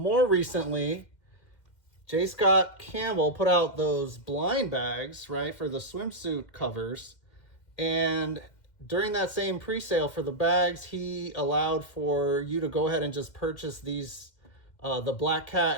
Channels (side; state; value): right; late; 2.1 ms